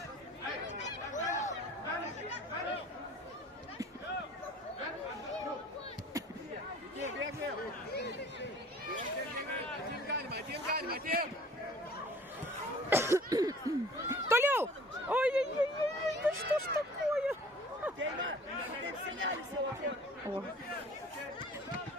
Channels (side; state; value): both; normal; correlation 0.48